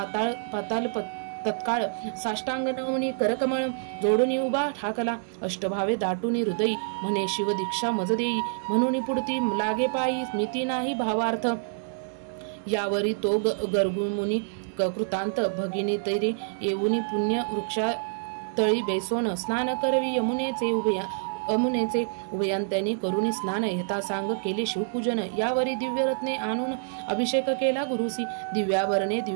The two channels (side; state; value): left; silent; digital silence